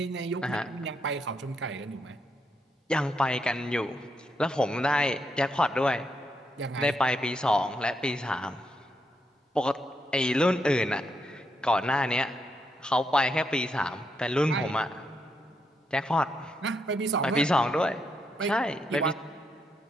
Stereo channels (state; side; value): normal; both; correlation 0.80